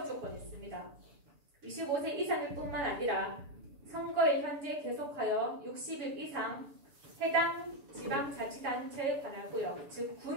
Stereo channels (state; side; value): late; left; 6.9 ms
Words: 조건이 있습니다. 25세 이상일 뿐만 아니라 선거일 현재 계속하여 60일 이상 해당 지방자치단체에 관할구역, 즉